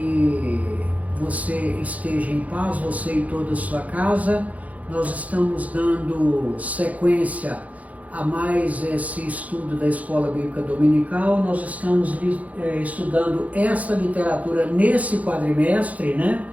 você esteja em paz, você e toda a sua casa. Nós estamos dando sequência a mais esse estudo da Escola Bíblica Dominical. Nós estamos estudando esta literatura nesse quadrimestre,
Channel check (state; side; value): late; left; 0.071 ms